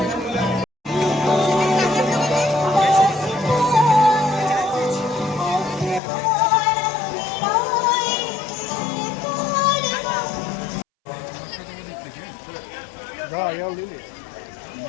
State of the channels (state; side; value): drops out; right; at 6.0 s